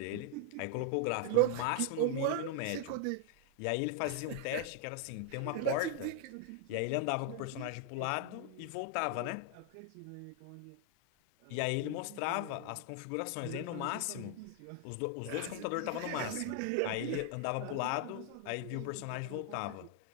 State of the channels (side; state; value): both; different; correlation 0.00